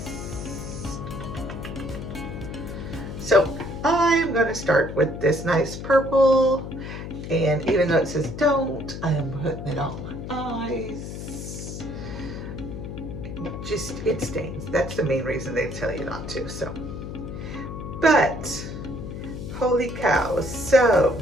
So I'm going to start with this nice purple, and even though it says don't, I am putting it on my eyes. Just, it stains. That's the main reason they tell you not to. So, but holy cow. So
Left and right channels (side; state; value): left; noise; hum, 8 dB below the sound